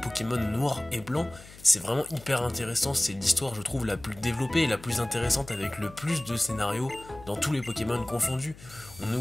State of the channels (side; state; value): left; noise; hum, 19 dB below the sound